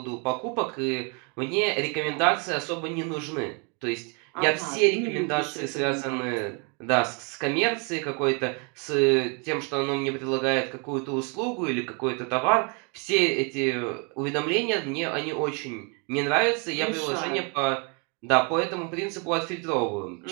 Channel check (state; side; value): quieter; left; 34.7 dB